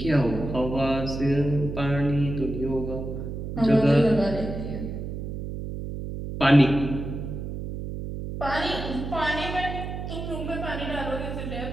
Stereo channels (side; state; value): right; noise; hum, 6 dB below the sound